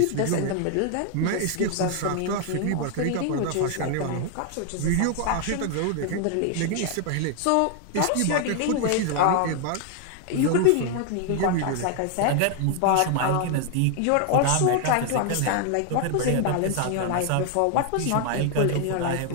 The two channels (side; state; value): both; different; correlation 0.00